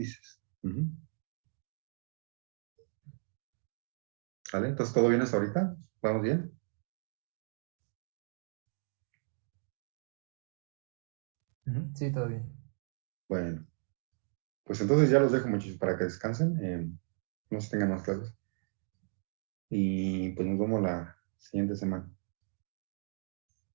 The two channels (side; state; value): left; silent; digital silence